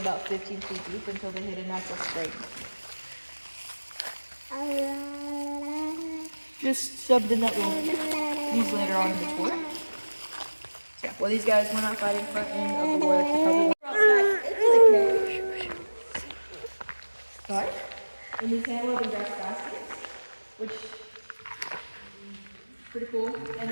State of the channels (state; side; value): inverted; both; correlation -1.00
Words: 15 feet deep until they hit a natural spring. Just shoved in that well. Used later on in the tour. Yeah, well, these guys went outside in front end of the war. They probably went outside into the cave. Sorry? And these handled and grass baskets, which pretty cool. And